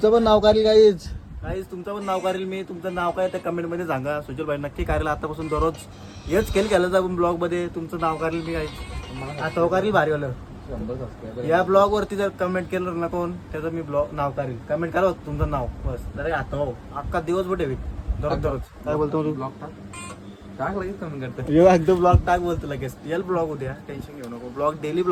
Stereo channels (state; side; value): identical; both; correlation 1.00